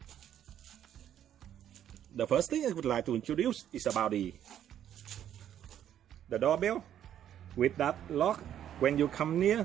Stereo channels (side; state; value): left; quieter; 10.4 dB